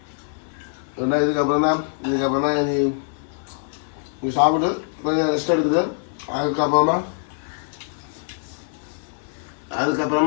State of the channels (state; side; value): silent; right; 56 dB below the other